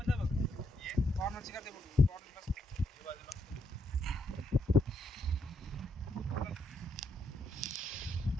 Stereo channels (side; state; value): both; normal; correlation 0.77